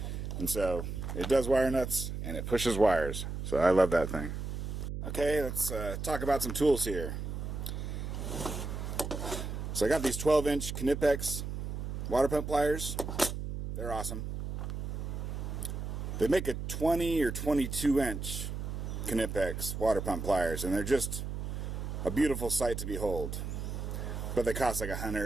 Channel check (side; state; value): right; noise; hum, 5 dB below the sound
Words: And so it does wire nuts and it pushes wires. So I love that thing. Okay, let's talk about some tools here. So I got these 12-inch Knipex water pump pliers. They're awesome. They make a 20 or 22-inch Knipex water pump pliers, and they're just a beautiful sight to behold. But they cost like $100